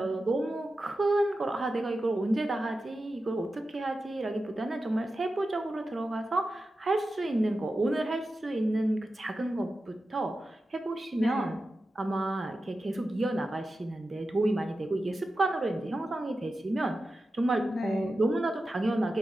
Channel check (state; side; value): normal; both; correlation 0.92